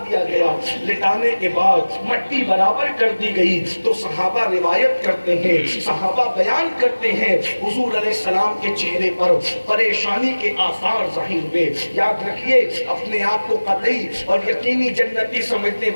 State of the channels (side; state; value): both; inverted; correlation -1.00